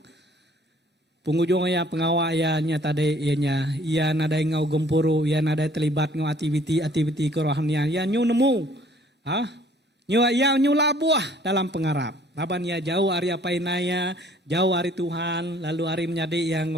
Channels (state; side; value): normal; both; correlation 0.57